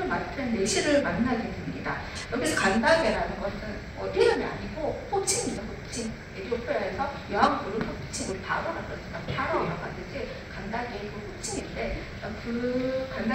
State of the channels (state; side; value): identical; both; correlation 1.00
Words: 맡은 내시를 만나게 됩니다. 여기서 간다게라는 것은 이름이 아니고 호칭입니다. 호칭. 에티오피아에서 여왕부를 호칭, 우리 바로라고 그러니까 바로라고 하듯이 간다게의 그 호칭인데 그